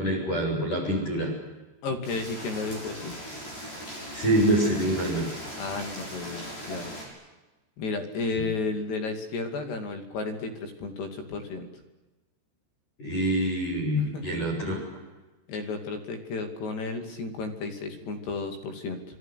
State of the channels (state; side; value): late; right; 13 ms